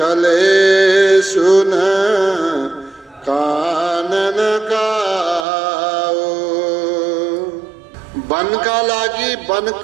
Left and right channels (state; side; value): drops out; left; at 5.5 s